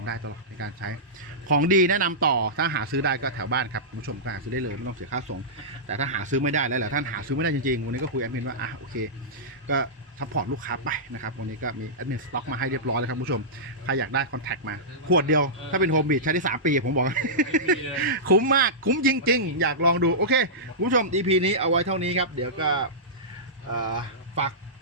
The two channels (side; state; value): both; normal; correlation -0.15